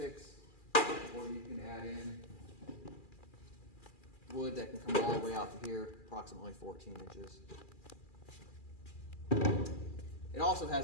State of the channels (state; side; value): late; right; 2.4 ms